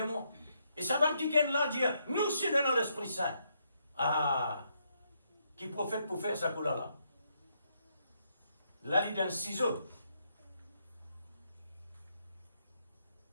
et ça va qui là dire, nous sommes dans l'Esprit Saint. Ah, qui prophète pour faire ça là? Là, il y a un ciseau.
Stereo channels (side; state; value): both; inverted; correlation -0.76